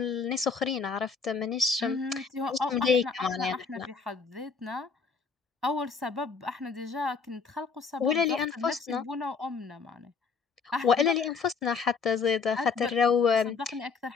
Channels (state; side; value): quieter; right; 5.1 dB